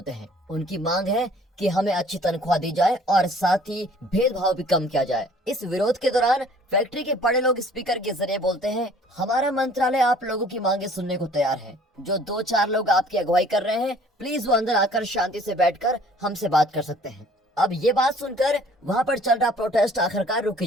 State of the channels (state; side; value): normal; both; correlation 0.55